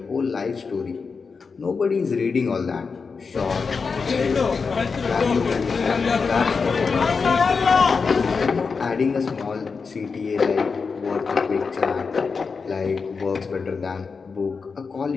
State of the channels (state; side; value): quieter; right; 5.0 dB